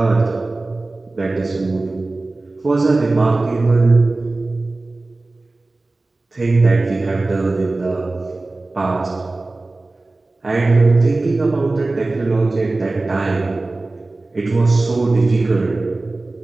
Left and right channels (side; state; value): left; quieter; 3.1 dB